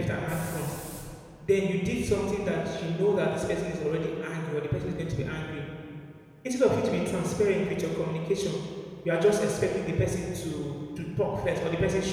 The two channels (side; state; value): both; identical; correlation 1.00